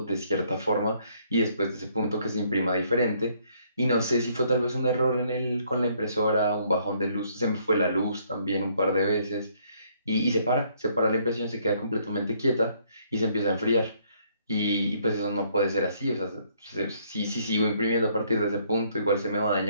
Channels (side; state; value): both; inverted; correlation -0.67